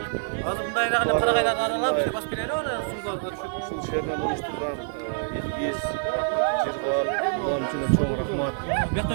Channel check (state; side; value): silent; left; digital silence